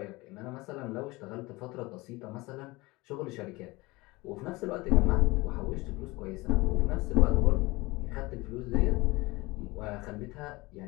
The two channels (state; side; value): quieter; right; 22.4 dB